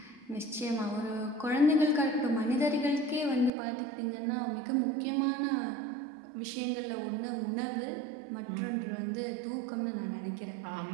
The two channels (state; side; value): drops out; left; at 3.5 s